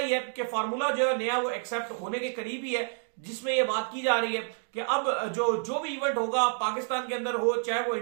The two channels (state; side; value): silent; left; 59 dB below the other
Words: है कि फार्मूला जो है नया वो एक्सेप्ट होने के करीब ही है, जिसमें ये बात की जा रही है कि अब जो भी इवेंट होगा पाकिस्तान के अंदर हो चाहे वो